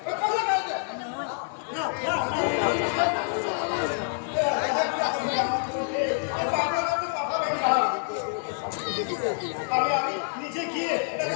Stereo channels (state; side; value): silent; right; digital silence